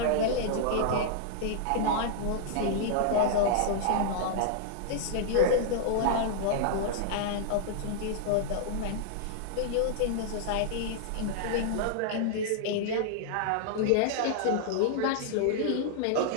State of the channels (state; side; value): different; both; correlation -0.01